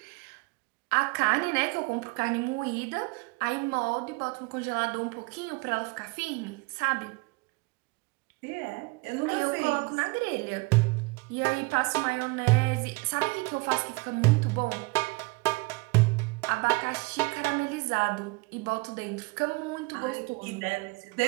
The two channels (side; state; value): left; quieter; 26.4 dB